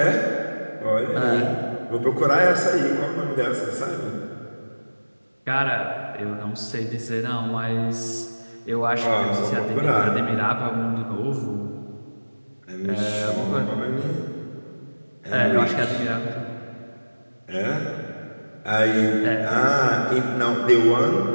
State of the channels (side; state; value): both; inverted; correlation -1.00